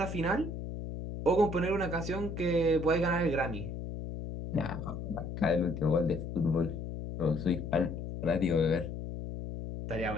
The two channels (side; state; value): left; noise; hum, 6 dB below the sound